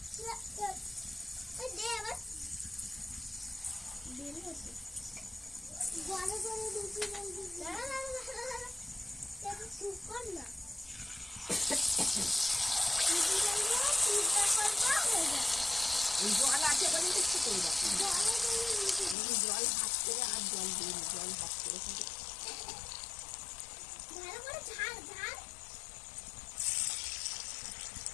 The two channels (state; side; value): drops out; right; at 19.2 s